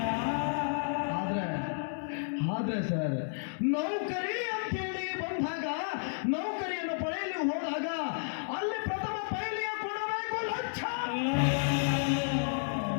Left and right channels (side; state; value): right; silent; 56 dB below the other